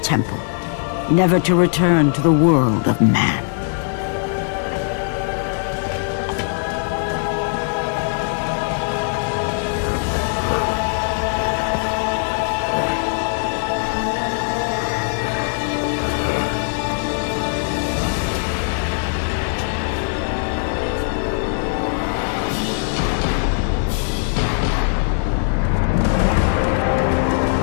temple, never to return to the world of man.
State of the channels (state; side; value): silent; right; 66 dB below the other